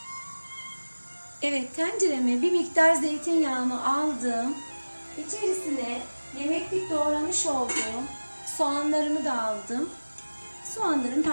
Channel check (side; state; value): both; inverted; correlation -1.00